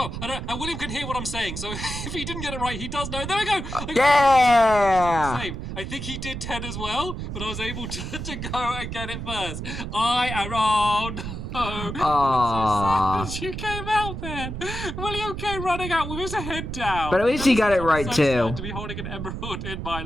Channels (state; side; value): noise; right; rumble, 6 dB below the sound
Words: And William can hear what I'm saying, so if he didn't get it right, he does know. There we go. Yeah! Same. I think he did 10 as well, but I was able to go and get it first. I am on. Oh, Aww. so sad you came out then. William came running out with his head down. But at least he got it right, so too. sad to be holding an emerald in my